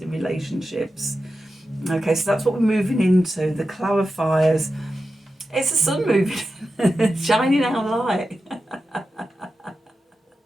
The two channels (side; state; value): both; normal; correlation 0.91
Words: relationships. Okay, so that's what we're moving into, the clarifiers. It's the sun moving, shining our light.